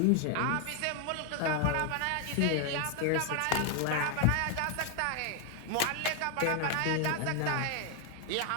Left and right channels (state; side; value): different; both; correlation 0.00